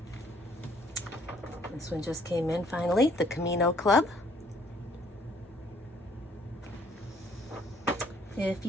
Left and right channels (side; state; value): both; normal; correlation 0.62